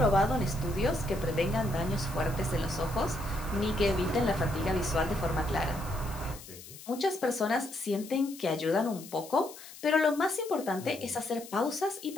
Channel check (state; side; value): noise; left; hiss, 16 dB below the sound